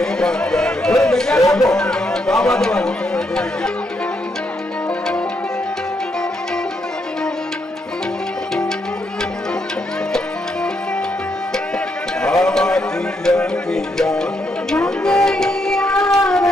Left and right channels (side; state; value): both; normal; correlation 0.78